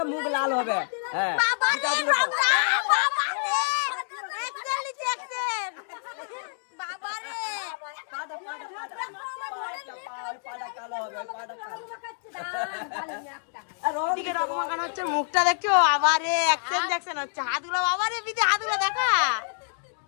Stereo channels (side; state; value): right; silent; digital silence